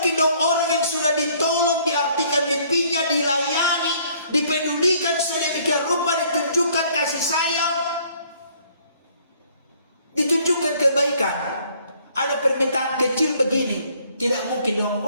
dong orang yang sudah ditolong, diartikan mimpinya, dilayani, dipedulikan sedemikian rupa, ditunjukkan kasih sayang, ditunjukkan kebaikan, ada permintaan kecil begini. Tidak mungkin dong,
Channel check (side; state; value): both; inverted; correlation -0.61